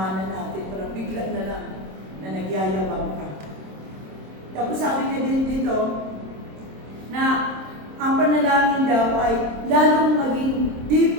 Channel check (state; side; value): late; left; 26 ms